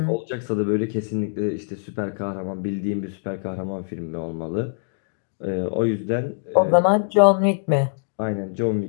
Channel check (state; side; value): silent; right; digital silence